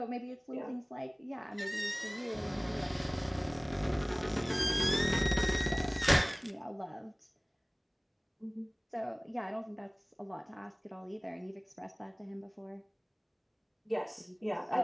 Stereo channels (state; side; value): identical; both; correlation 1.00